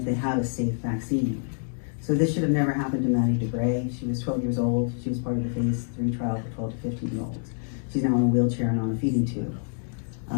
they had a safe vaccine. So this should have never happened to Maddie DeGray. She was 12 years old. She was part of the phase 3 trial for 12 to 15-year-olds. She's now in a wheelchair and on a feeding tube.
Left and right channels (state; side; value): silent; right; digital silence